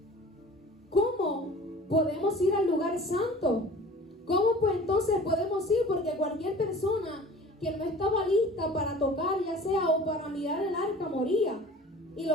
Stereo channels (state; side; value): normal; both; correlation 0.44